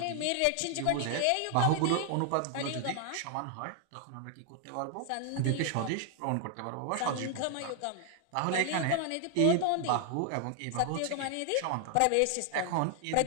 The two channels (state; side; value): different; both; correlation 0.00